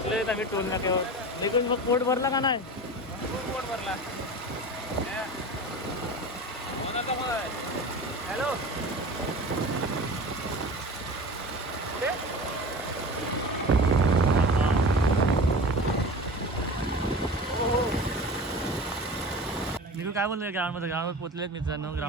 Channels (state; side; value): normal; both; correlation 0.33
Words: आम्ही टोल नाक्यावर. निघून मग पोट भरला का नाही. पोट भरला. हॅलो काय बोलले ग्राउंडमध्ये? ग्राउंडवर पोहोचलेत मित्रांनो.